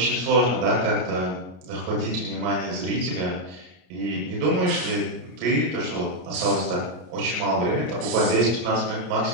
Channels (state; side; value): late; left; 33 ms